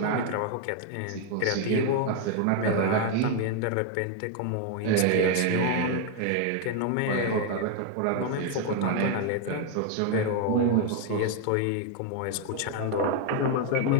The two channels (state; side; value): different; both; correlation 0.01